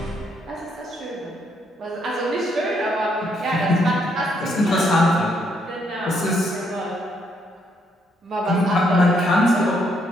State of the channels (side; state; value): both; normal; correlation 0.73